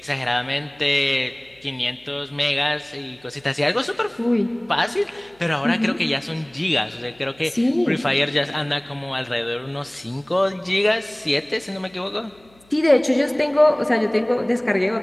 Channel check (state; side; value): noise; left; hum, 30 dB below the sound